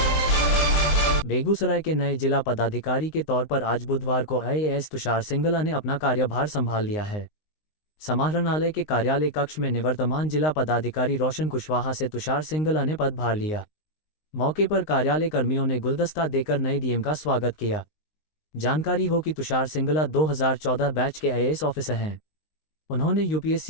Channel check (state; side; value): late; right; 19 ms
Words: Begusarai के नए जिला पदाधिकारी के तौर पर आज बुधवार को आईएएस तुषार सिंगला ने अपना कार्यभार संभाल लिया है। समाहरणालय के कार्यालय कक्ष में निवर्तमान जिला पदाधिकारी रोशन कुशवाहा से तुषार सिंगला ने पदभार लिया। मौके पर कार्यालय कर्मियों ने गुलदस्ता देकर नए डीएम का स्वागत किया। जानकारी हो कि तुषार सिंगला 2014 बैच के आईएएस ऑफिसर हैं। उन्होंने